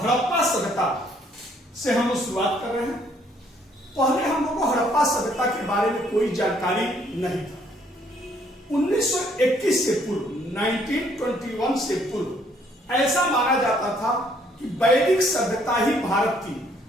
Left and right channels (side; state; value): both; normal; correlation 0.65